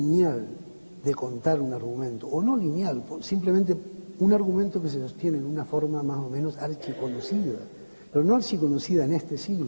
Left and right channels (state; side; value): inverted; both; correlation -1.00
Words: de contar un argumento, o no lineal, simplemente un argumento que se sostiene en una forma más o menos archiconocida, pero no archiconocida en este